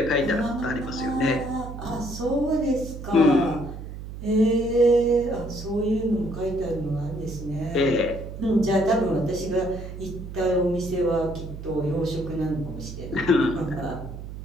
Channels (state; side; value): noise; right; hum, 10 dB below the sound